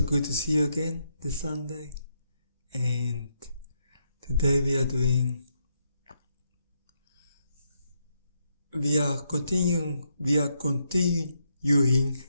to see you again this Sunday. And today we are continuing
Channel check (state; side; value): inverted; both; correlation -0.79